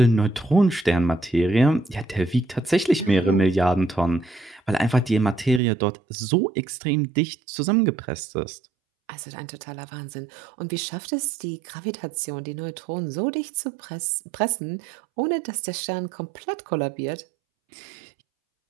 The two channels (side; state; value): left; drops out; at 5.6 s